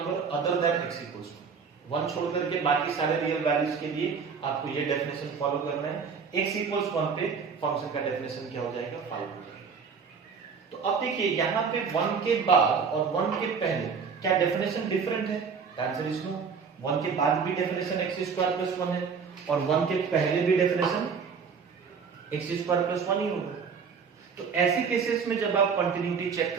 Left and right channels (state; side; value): quieter; left; 5.9 dB